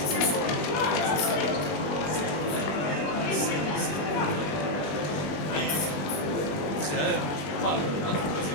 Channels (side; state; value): right; late; 21 ms